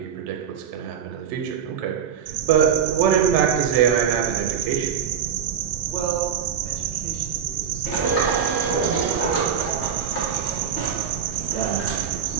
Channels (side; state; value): left; quieter; 8.0 dB